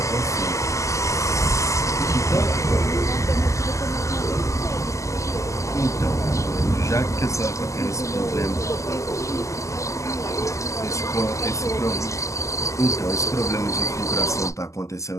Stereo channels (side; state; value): right; late; 0.15 ms